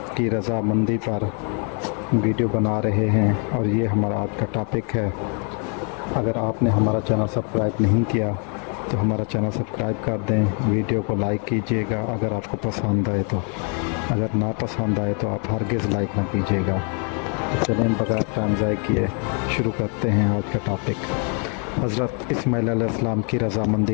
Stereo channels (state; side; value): quieter; right; 39.3 dB